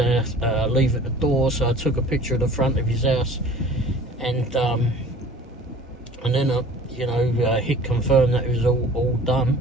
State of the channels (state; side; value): normal; both; correlation 0.46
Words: leave at the door, so I took a picture of the front of his house, and then I, hit confirm that it was all done,